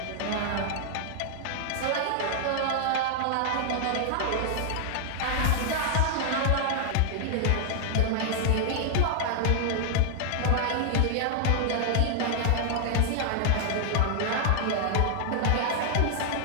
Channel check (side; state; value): both; different; correlation -0.01